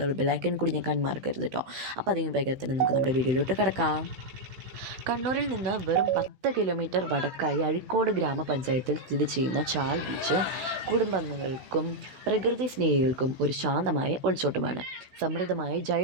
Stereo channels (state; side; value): late; left; 16 ms